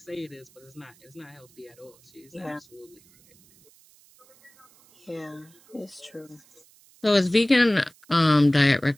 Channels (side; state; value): right; noise; hiss, 28 dB below the sound